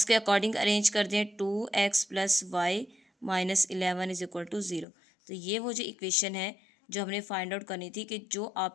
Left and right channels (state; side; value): drops out; right; at 4.9 s